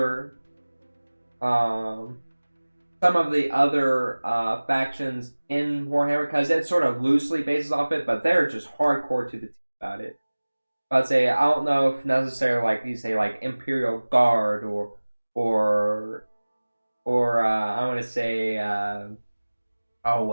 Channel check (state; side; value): inverted; both; correlation -1.00